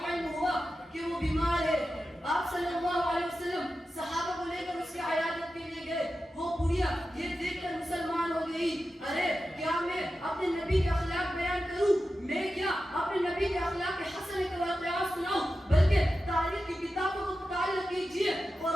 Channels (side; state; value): both; normal; correlation 0.92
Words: علم ہوا کہ وہ بیمار ہے۔ آپ صلی اللہ علیہ وسلم صحابہ کو لے کر اس کی عیادت کے لیے گئے۔ وہ بڑھیا یہ دیکھ کر مسلمان ہو گئی: ارے کیا میں اپنے نبی کے اخلاق بیان کروں؟ میں کیا اپنے نبی کے اخلاق حسن کے واقعات سناؤں؟ بلکہ تاریخ کی کتابوں کو مطالعہ کیجیے،